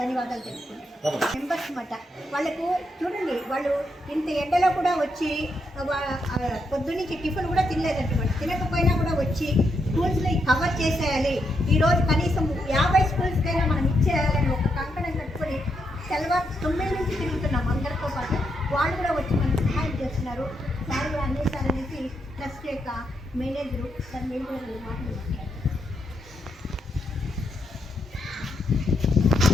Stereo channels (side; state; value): both; normal; correlation 0.80